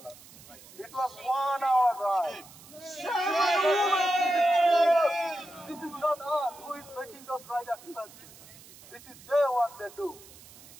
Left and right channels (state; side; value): noise; right; hiss, 20 dB below the sound